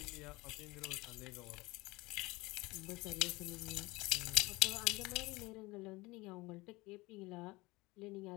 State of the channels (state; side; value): quieter; right; 21.9 dB